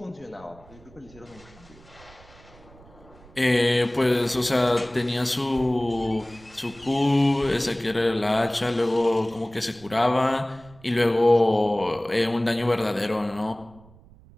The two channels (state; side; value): noise; right; rumble, 24 dB below the sound